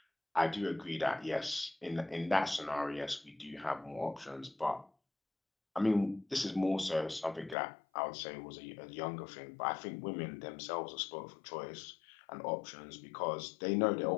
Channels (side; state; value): right; drops out; at 7.6 s